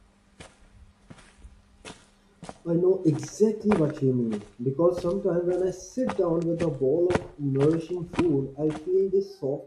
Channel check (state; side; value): identical; both; correlation 1.00